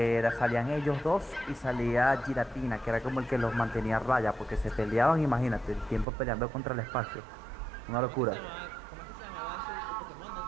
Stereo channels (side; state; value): left; drops out; at 6.1 s